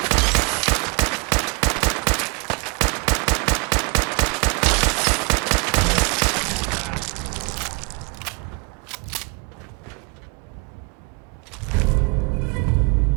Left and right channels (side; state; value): left; quieter; 31.6 dB